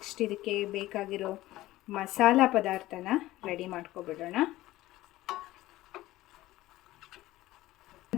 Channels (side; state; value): right; quieter; 16.7 dB